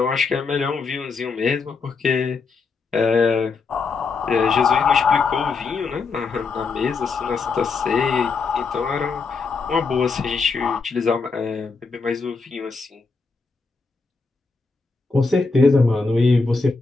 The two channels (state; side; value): quieter; right; 4.5 dB